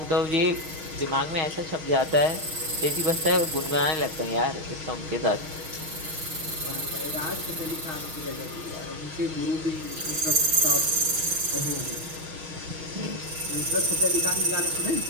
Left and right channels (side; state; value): left; late; 6.4 ms